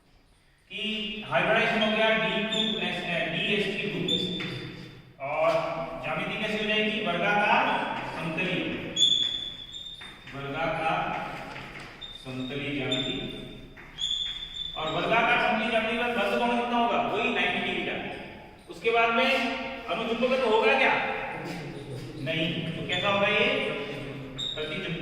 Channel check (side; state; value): both; identical; correlation 1.00